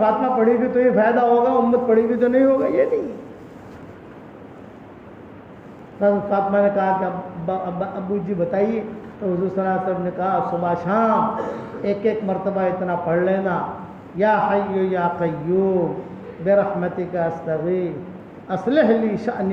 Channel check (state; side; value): identical; both; correlation 1.00